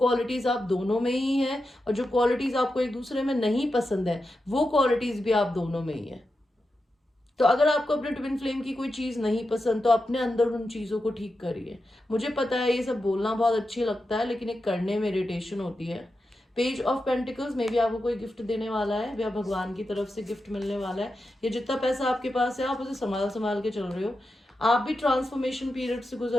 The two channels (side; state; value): both; normal; correlation 0.89